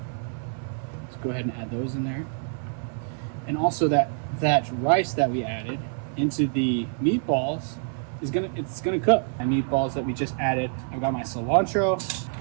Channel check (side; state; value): left; silent; 61 dB below the other